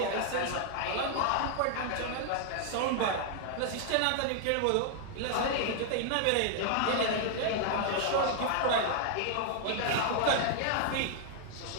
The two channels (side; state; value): both; different; correlation 0.00